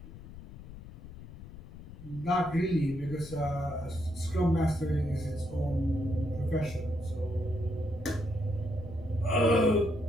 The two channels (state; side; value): noise; left; rumble, 14 dB below the sound